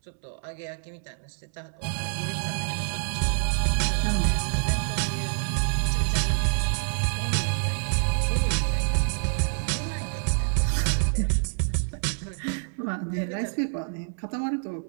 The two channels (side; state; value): left; silent; 60 dB below the other